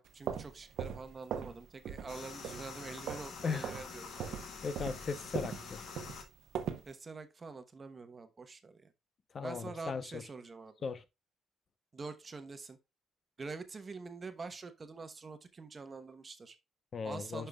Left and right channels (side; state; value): both; normal; correlation 0.71